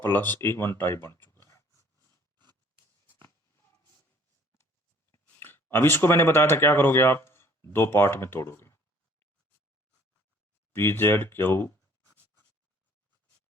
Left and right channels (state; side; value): normal; both; correlation 0.56